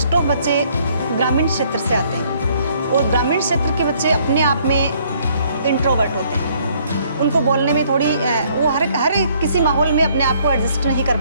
ऑफ बच्चे ग्रामीण क्षेत्र से आते हैं और ग्रामीण क्षेत्र के बच्चे अपने आप में इंट्रोवर्ट होते हैं। उनको बोलने में थोड़ी वो हर किसी माहौल में अपने आप को एडजस्ट नहीं कर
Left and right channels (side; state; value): both; inverted; correlation -0.64